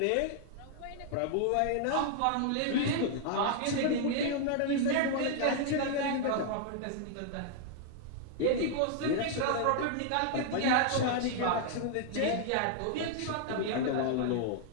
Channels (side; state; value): both; different; correlation 0.00